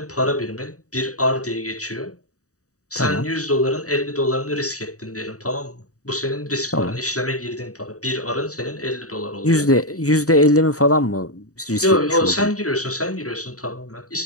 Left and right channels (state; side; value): late; right; 0.66 ms